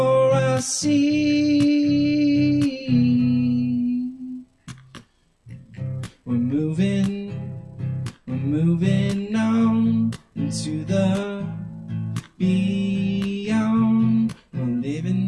I see. We're moving on into the beyond. We're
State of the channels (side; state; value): both; identical; correlation 1.00